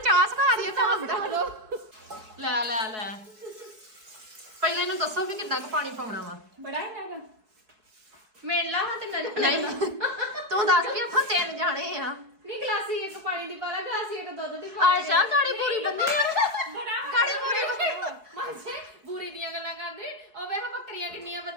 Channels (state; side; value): late; left; 4.7 ms